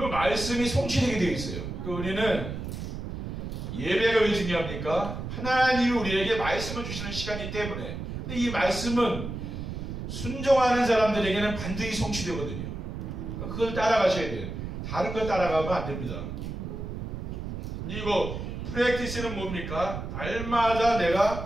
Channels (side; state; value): right; noise; rumble, 6 dB below the sound